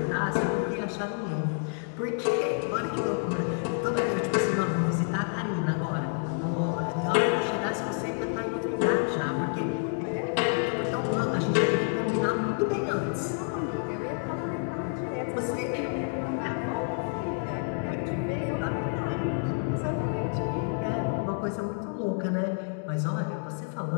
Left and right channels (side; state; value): right; silent; 59 dB below the other